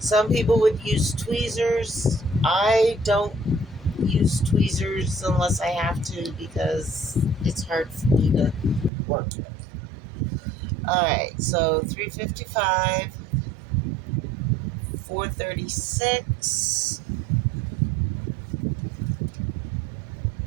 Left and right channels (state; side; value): drops out; left; at 8.9 s